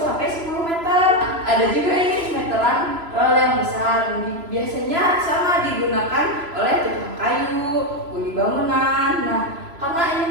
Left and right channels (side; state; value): left; late; 3.0 ms